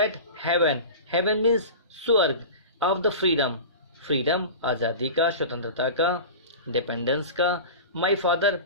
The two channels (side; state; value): both; inverted; correlation -0.33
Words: heaven means स्वर्ग। ऑफ द फ्रीडम आज़ादी का, स्वतंत्रता का, डिपेंडेंस का। माई फादर